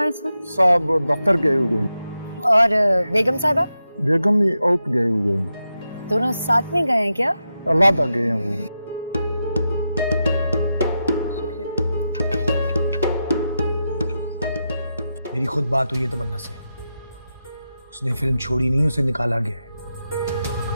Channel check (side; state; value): both; inverted; correlation -0.88